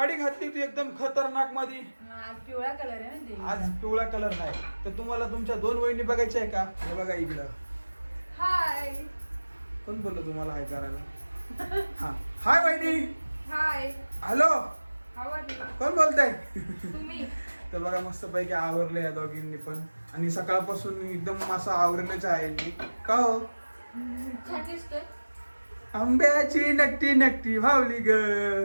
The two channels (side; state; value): both; inverted; correlation -1.00